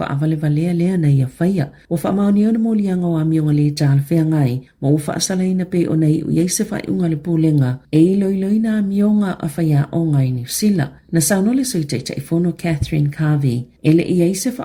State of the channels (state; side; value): identical; both; correlation 1.00